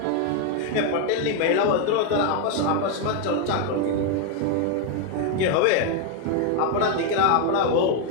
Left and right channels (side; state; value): both; different; correlation 0.01